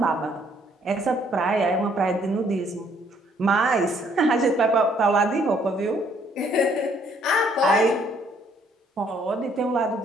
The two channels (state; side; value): normal; both; correlation 0.65